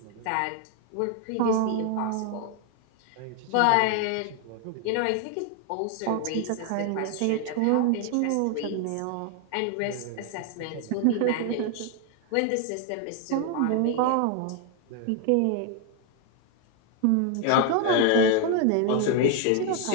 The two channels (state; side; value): different; both; correlation 0.01